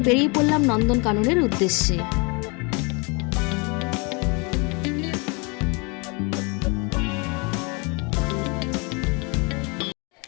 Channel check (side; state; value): right; quieter; 30.8 dB